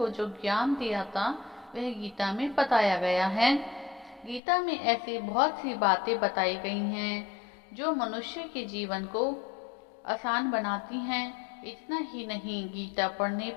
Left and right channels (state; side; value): drops out; right; at 4.4 s